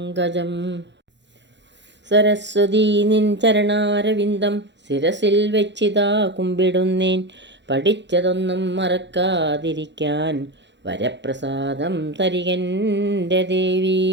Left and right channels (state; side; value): late; left; 0.52 ms